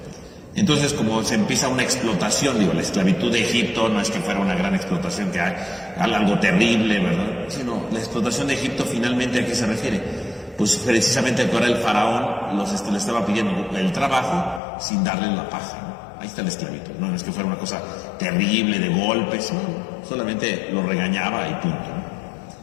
Entonces, como se empieza una explotación, digo, la esclavitud de Egipto no es que fuera una gran explotación, que hay algo terrible, ¿verdad? Sino la explotación de Egipto, finalmente, ¿a qué se refiere? Pues precisamente ahora el faraón le estaba pidiendo el trabajo sin darle la paja, ¿no? Ahí está la esclavitud. No es que fuera una cosa terrible de golpes, no, solamente lo regañaba y punto, ¿no?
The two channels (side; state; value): right; drops out; at 14.6 s